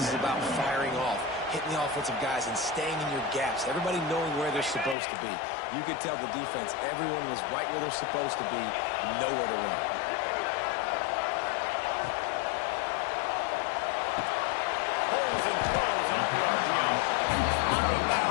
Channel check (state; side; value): drops out; right; at 5.0 s